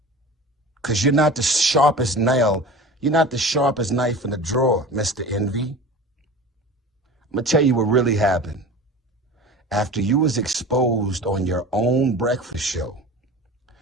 Because you're not the sharpest nail. You're not the sharpest knife in the drawer, Mr. Envy. I'm going to tell you what really happened. After you was exposed on your own breakfast show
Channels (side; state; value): both; normal; correlation 0.36